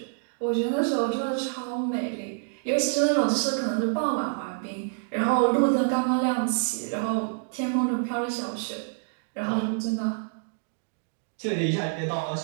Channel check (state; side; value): silent; left; digital silence